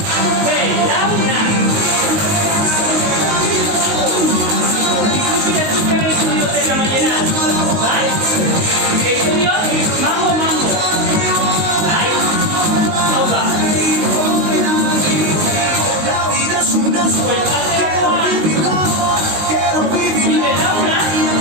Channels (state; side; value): late; left; 19 ms